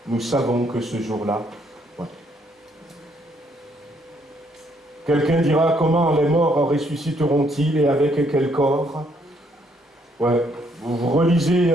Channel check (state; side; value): normal; both; correlation 0.70